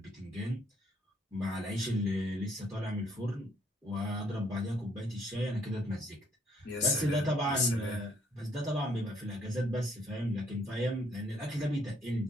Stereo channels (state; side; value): normal; both; correlation 0.67